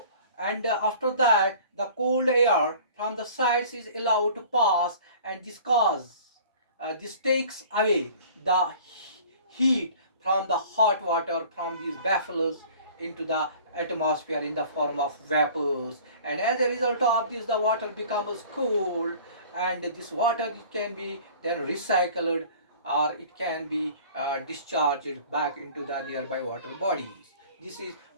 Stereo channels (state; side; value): inverted; both; correlation -0.47